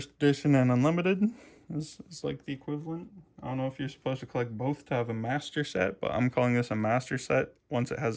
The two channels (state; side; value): identical; both; correlation 1.00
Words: edition and unlimited is like the equivalent. I don't know if you're supposed to collect both to have a master set, but I'm calling this a master set once it